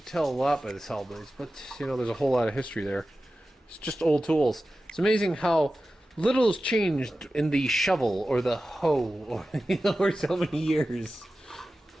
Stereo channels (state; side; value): normal; both; correlation 0.94